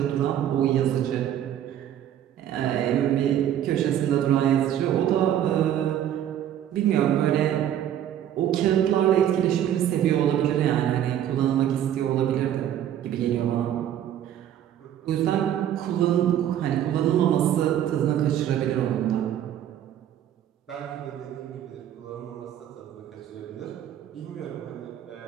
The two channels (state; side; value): quieter; left; 10.8 dB